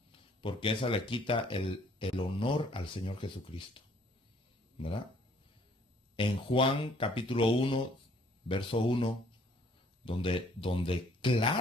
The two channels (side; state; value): both; normal; correlation 0.61